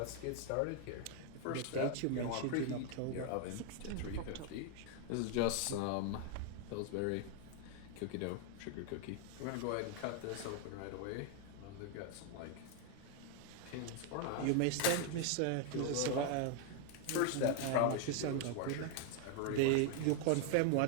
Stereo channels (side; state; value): both; different; correlation 0.00